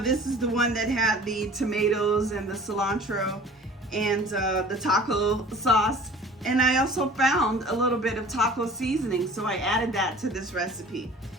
this is the one that had the tomatoes and the cilantro and the taco sauce, and I also found a little bit of taco seasoning, so I added that to this recipe.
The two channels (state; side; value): normal; both; correlation 0.46